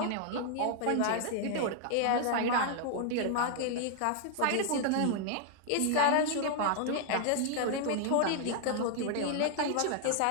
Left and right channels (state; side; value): different; both; correlation 0.00